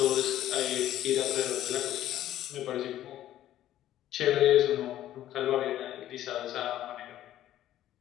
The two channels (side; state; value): right; quieter; 12.8 dB